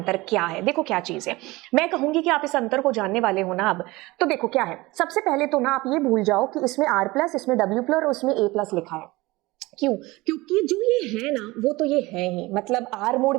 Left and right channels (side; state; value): left; quieter; 21.1 dB